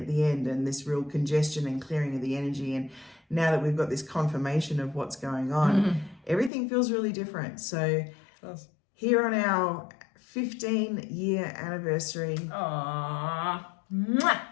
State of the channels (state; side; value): drops out; right; at 6.5 s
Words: the end and this real congestion and clearing of the energy. And now that we've got this confirmation of what's going on, everything feels really different. So here on our 15-year anniversary,